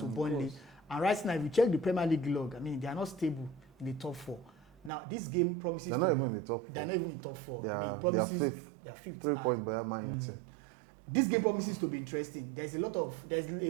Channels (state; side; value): drops out; left; at 4.9 s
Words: Burnley. And right now, if you check the Premier League log, I mean, they are not stable in the top four. Now, this game promises they're not even in the top four. I mean, it promises they are fifth. 3 points behind Man United. This game promises to be interesting. There's a